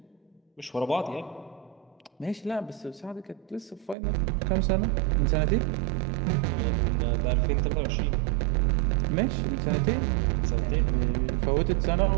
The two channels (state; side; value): drops out; left; at 4.0 s